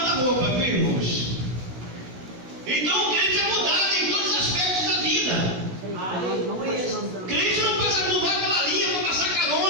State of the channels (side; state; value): left; late; 16 ms